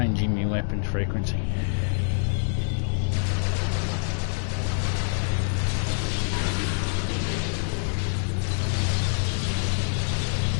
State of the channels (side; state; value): right; silent; digital silence